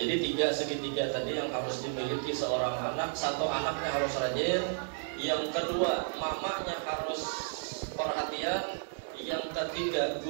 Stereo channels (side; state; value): left; silent; 56 dB below the other